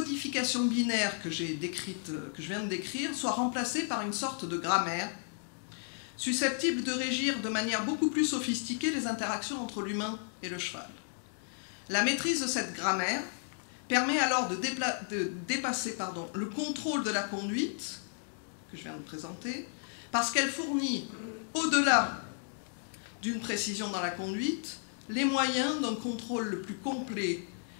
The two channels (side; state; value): right; silent; 56 dB below the other